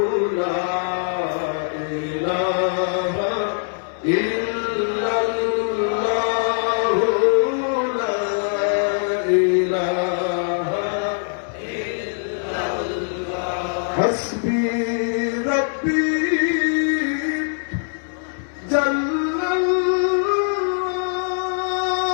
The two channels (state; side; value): silent; right; digital silence